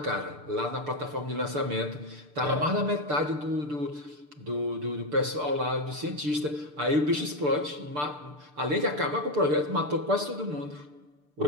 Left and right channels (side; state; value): left; late; 6.8 ms